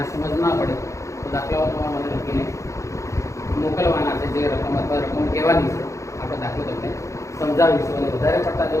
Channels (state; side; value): late; right; 0.15 ms